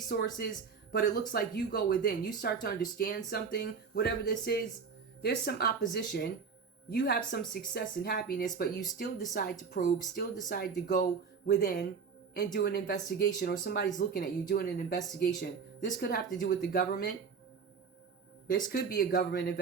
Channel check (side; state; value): left; quieter; 5.8 dB